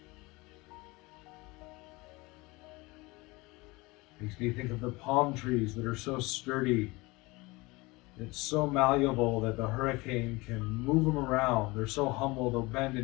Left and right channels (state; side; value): quieter; right; 23.3 dB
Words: Makes me think of the palm trees that are so sturdy. It's so malleable that the hurricane can move them around. They're so humble, they'll bend